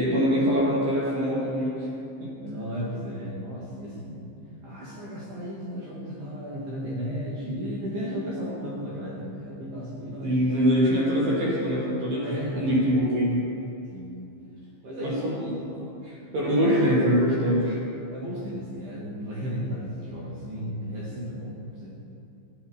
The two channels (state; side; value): late; left; 15 ms